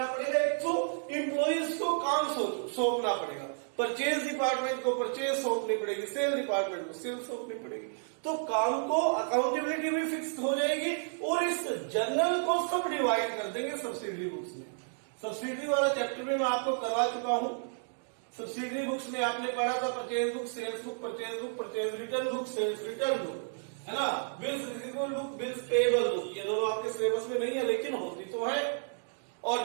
पड़ेगा? एक तो एम्प्लॉइज को काम सौंपना पड़ेगा, परचेज डिपार्टमेंट को परचेज सौंपनी पड़ेगी, सेल डिपार्टमेंट को सेल सौंपनी पड़ेगी। तो काम को अकाउंटेबिलिटी भी फिक्स हो जाएगी और इस जर्नल को सब डिवाइड कर देंगे सब्सिडरी बुक्स में। सब्सिडरी वाला चैप्टर में मैं आपको करवा चुका हूं। सब्सिडरी बुक्स में आपने पढ़ा था purchase book, sales book, purchase return book, sales return book, है ना? Bills receivable book, bills payable book, ये दोनों आपके सिलेबस में नहीं है लेकिन होती तो है,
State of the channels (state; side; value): silent; left; digital silence